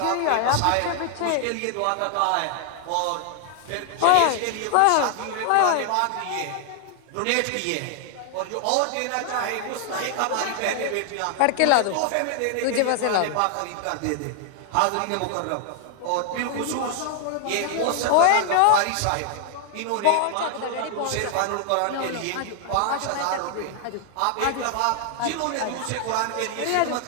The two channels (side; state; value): both; different; correlation 0.00